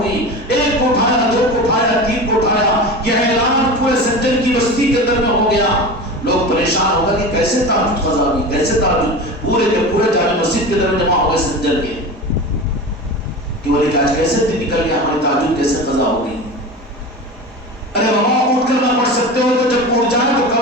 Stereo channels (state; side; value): normal; both; correlation 0.29